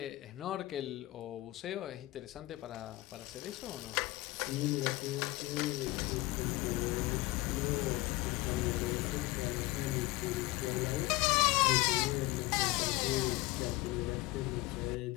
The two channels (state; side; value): quieter; right; 19.5 dB